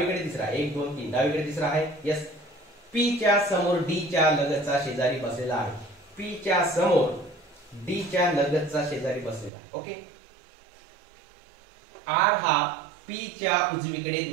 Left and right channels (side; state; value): left; drops out; at 9.5 s